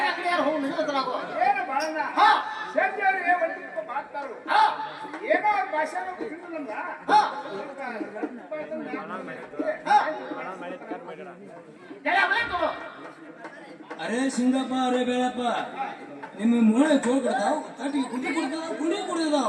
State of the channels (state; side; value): identical; both; correlation 1.00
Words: ಅಂಗಡಿ ಯಾರು ಹೋಗಿ ನಿಲ್ಲುತ್ತಾಗೋ ಏನೋ ಭಾಷೆ ಅರೇ ಸಿಂಗಪ್ಪ ಅರೇ ಬೇಳಪ್ಪ ನಿಮ್ಮ ಮೂಳೆ ಚೋಳ್ ಕೊಡ್ತಾವ್ ತಟ್ಟಿಗೆ ಕುಂಡಿ